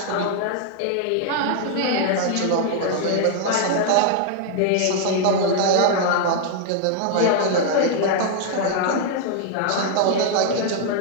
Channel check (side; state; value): both; different; correlation 0.00